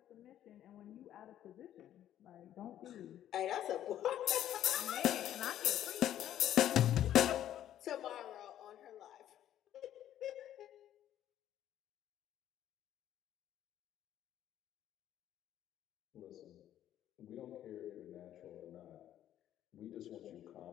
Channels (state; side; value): quieter; right; 11.6 dB